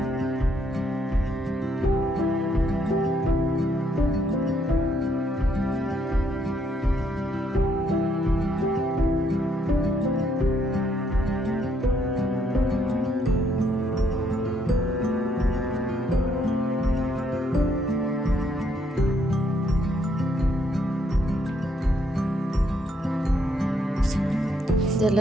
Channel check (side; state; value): both; normal; correlation 0.72